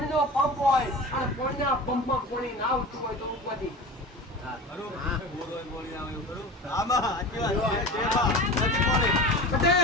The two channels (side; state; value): both; normal; correlation 0.33